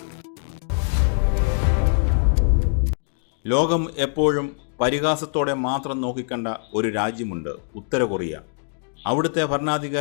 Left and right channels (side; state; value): right; silent; digital silence